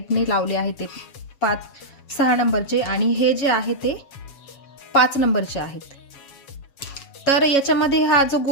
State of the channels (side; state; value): right; late; 7.2 ms